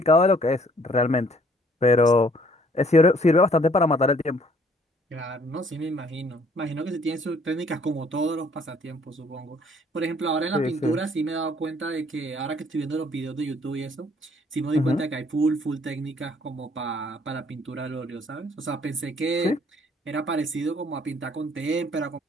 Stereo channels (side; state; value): both; normal; correlation 0.61